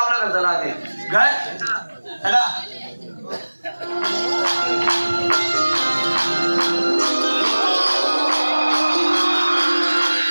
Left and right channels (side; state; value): both; inverted; correlation -1.00